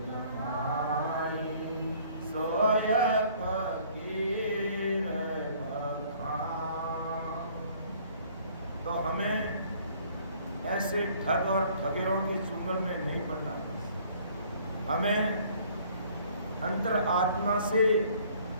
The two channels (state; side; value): inverted; both; correlation -0.57